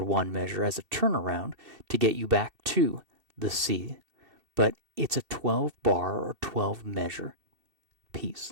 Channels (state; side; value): late; left; 2.7 ms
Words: 1 measure as a turnaround to get you back to the C. But it's a 12 bar or 12 measure piece.